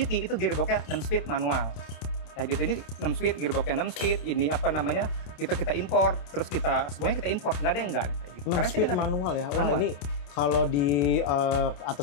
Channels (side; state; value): right; late; 28 ms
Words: itu gearboxnya 6 speed manual. Kayak gitu, ini 6 speed, gearboxnya 6 speed, ini apa namanya, itu kita import, terus semuanya kita import, nggak ada yang enggak. Kayak gitu. 6 speed manual ya? Wah, ini kalau di